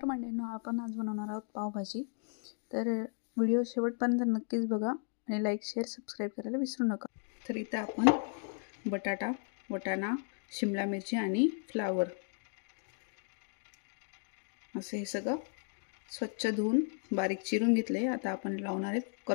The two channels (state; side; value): silent; right; 54 dB below the other